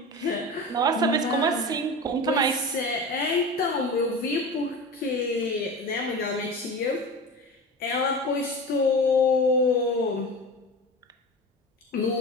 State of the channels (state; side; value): normal; both; correlation 0.30